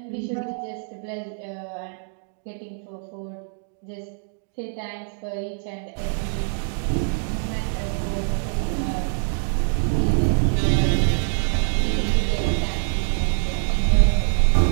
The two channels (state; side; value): silent; left; digital silence